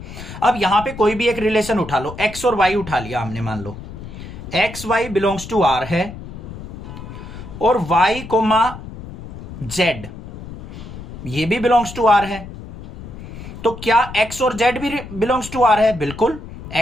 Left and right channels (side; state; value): left; noise; rumble, 12 dB below the sound